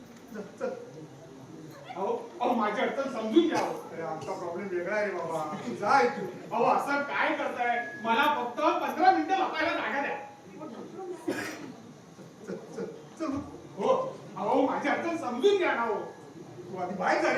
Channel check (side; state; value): both; identical; correlation 1.00